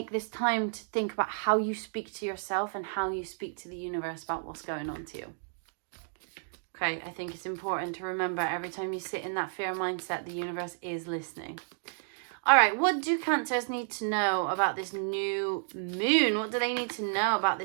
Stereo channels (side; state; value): left; silent; digital silence